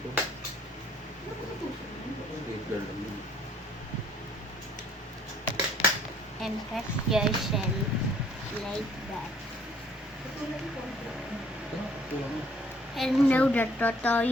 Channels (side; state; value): both; normal; correlation 0.61